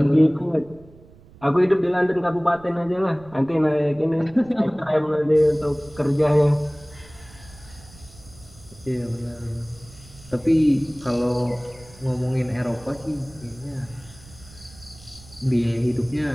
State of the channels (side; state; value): right; noise; rumble, 23 dB below the sound